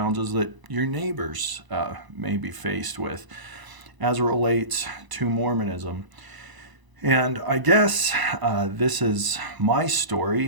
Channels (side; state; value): left; late; 1.0 ms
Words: that your neighbors may be faced with as it relates to Mormonism. And I guess this is my